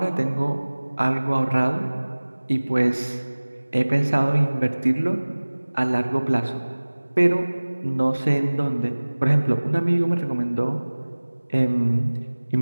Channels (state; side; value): inverted; both; correlation -1.00